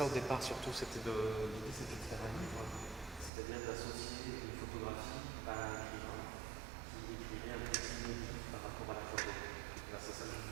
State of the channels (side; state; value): left; drops out; at 3.3 s